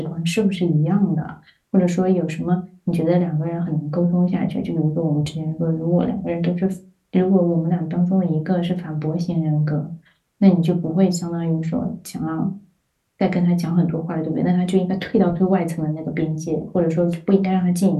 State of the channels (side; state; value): both; identical; correlation 1.00